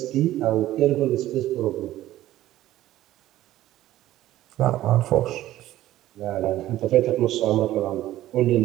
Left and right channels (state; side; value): quieter; left; 14.4 dB